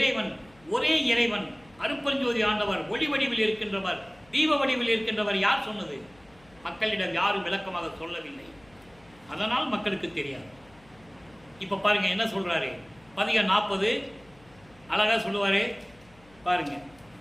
ஒரே இறைவன் அருப்பெருஞ்சோதி ஆண்டவர், ஒளி வடிவில் இருக்கின்றவர், தீப வடிவில் இருக்கின்றவர் யார் சொன்னது? மக்களிடம் யாரும் விளக்கமாக சொல்லவில்லை. அதனால் மக்களுக்கு தெரியாது. இப்ப பாருங்க என்ன சொல்றாரு. பதிகம் 40 அழகா சொல்லுவாரு பாருங்க.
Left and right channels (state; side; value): noise; left; hum, 28 dB below the sound